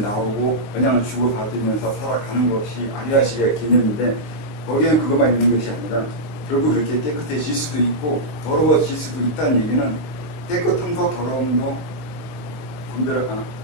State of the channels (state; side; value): late; right; 20 ms